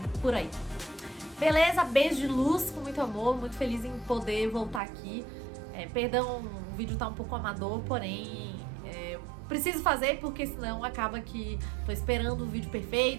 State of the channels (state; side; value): drops out; left; at 4.8 s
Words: por aí. Beleza? Beijo de luz, com muito amor, muito feliz em poder voltar aqui. Perdão, o vídeo tá um pouco amador, porém preciso fazer porque senão acaba que tô esperando o vídeo